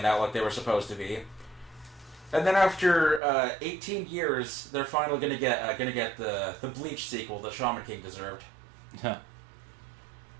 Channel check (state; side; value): drops out; left; at 3.2 s